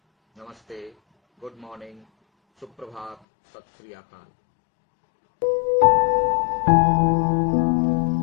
नमस्ते, गुड मॉर्निंग, सुप्रभात, सत श्री अकाल।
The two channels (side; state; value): right; drops out; at 3.2 s